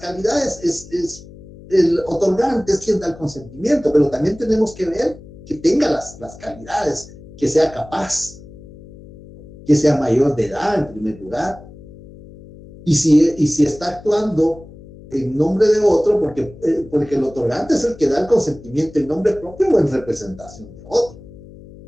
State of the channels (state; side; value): noise; left; hum, 19 dB below the sound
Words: es el otorgante es quien da el consentimiento, pero también tenemos que ver que tenga las calidades, que sea capaz, que sea mayor de edad en primer lugar, y si está actuando en nombre de otro, porque el otorgante es el que da el consentimiento en nombre propio o en representación de otro.